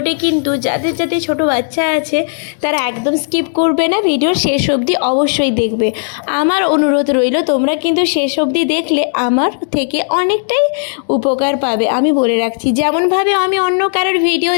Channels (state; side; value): silent; right; digital silence